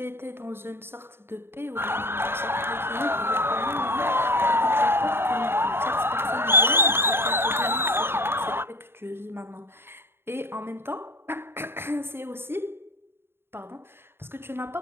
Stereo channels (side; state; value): left; late; 0.11 ms